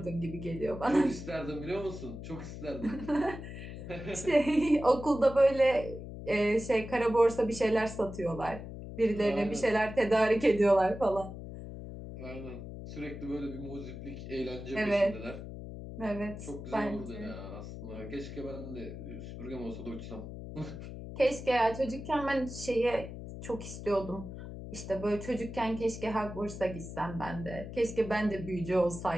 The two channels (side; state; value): left; noise; hum, 10 dB below the sound